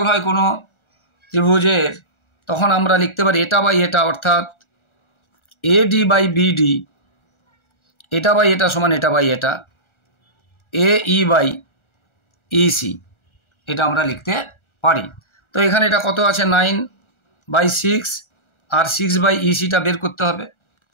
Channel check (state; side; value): late; right; 1.4 ms